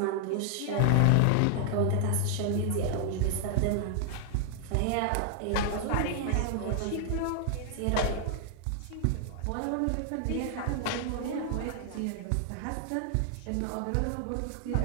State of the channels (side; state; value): both; different; correlation 0.00